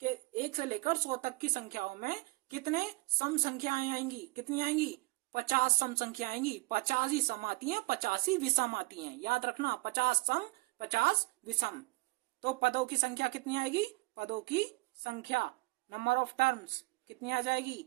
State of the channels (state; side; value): quieter; left; 24.0 dB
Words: 1 से लेकर 100 तक की संख्याओं में कितने सम संख्याएं आएंगी, कितनी आएंगी, 50 सम संख्या आएंगी, 50 ही सम आती है, 50 ही विषम आती है, याद रखना, 50 सम 50 विषम। तो पदों की संख्या कितनी आएगी, पदों की संख्या, नंबर ऑफ टर्म्स कितनी आ